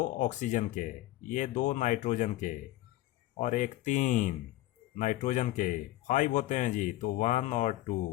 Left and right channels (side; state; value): right; quieter; 16.3 dB